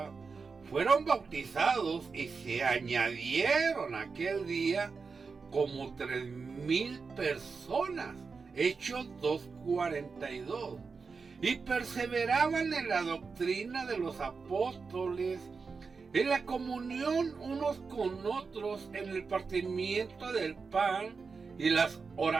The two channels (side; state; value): left; quieter; 4.9 dB